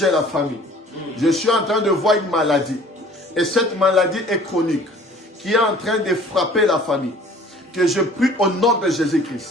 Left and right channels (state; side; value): normal; both; correlation 0.50